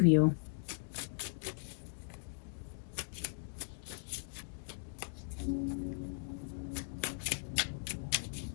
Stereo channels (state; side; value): silent; right; digital silence